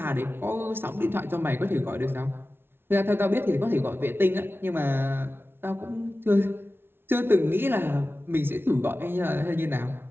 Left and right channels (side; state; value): left; late; 0.11 ms